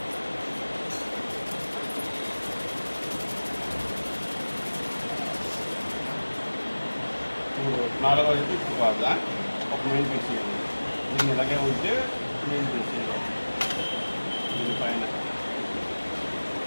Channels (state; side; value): inverted; both; correlation -1.00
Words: నాలుగో వైపు ఇప్పుడు కాదా ఒక మెయిన్ పీస్ చేయాలి. దీన్ని ఇలాగే ఉంటే మెయిన్ పీస్ చేయాలి. దీనిపైన